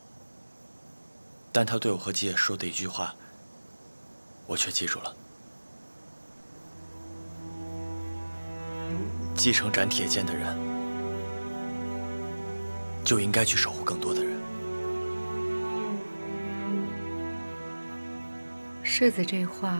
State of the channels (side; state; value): both; inverted; correlation -1.00